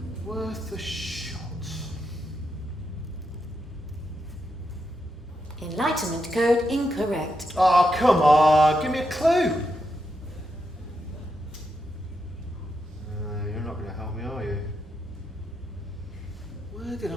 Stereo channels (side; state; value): both; normal; correlation 0.84